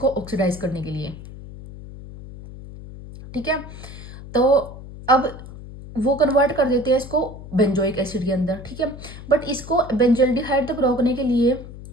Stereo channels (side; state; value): left; noise; hum, 14 dB below the sound